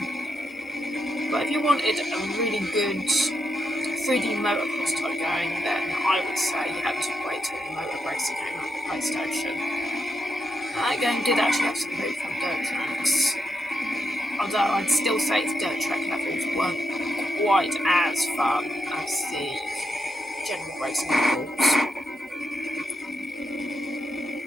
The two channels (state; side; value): normal; both; correlation 0.83